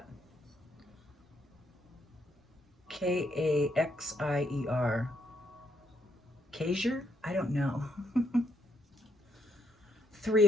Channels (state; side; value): normal; both; correlation 0.76